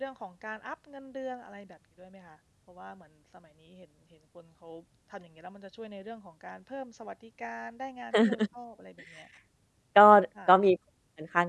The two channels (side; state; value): both; identical; correlation 1.00